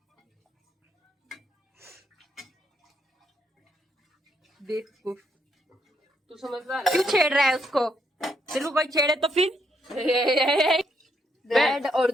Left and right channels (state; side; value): normal; both; correlation 0.74